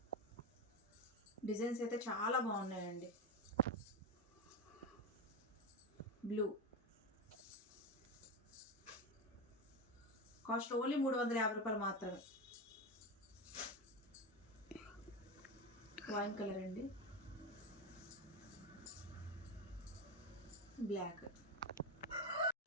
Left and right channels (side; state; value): both; normal; correlation 0.17